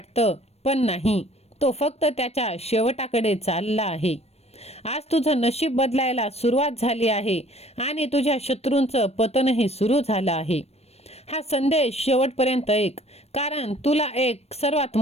पण नाही, तो फक्त त्याच्या शेवटाकडे चालला आहे. आज तुझं नशीब बदलायला सुरुवात झाली आहे आणि तुझ्या शत्रूंचं पतनही सुरू झालं आहे. हा संदेश शेवटपर्यंत ऐक, कारण तुला एक सर्वात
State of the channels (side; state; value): right; late; 0.31 ms